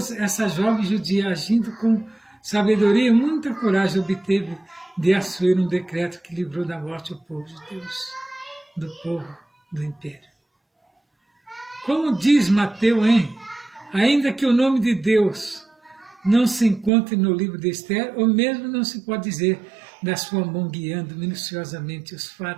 essa jovem judia, agindo com sabedoria e muita coragem, obteve de Assuero um decreto que livrou da morte o povo de Deus, do povo do império. Como diz Mateus, ainda que o nome de Deus não se encontre no livro de Esther, ou mesmo não se pode dizer da sua mão guiando minuciosamente os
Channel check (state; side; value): drops out; left; at 16.9 s